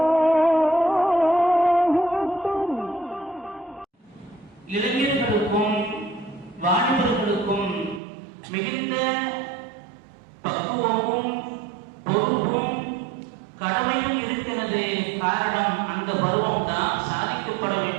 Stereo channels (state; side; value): drops out; left; at 8.0 s